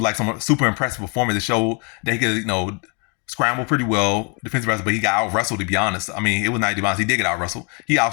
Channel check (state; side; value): quieter; right; 35.1 dB